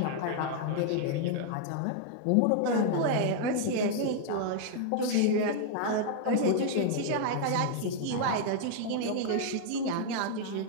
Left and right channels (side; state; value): both; different; correlation 0.00